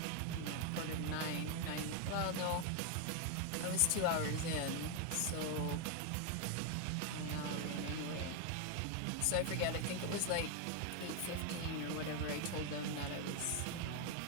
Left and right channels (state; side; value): different; both; correlation 0.01